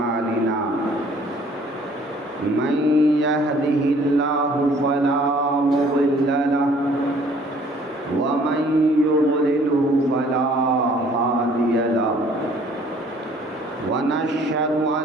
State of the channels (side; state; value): both; normal; correlation 0.57